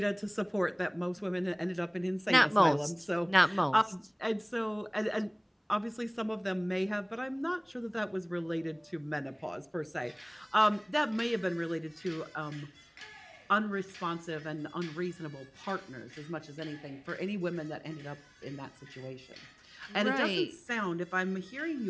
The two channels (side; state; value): both; identical; correlation 1.00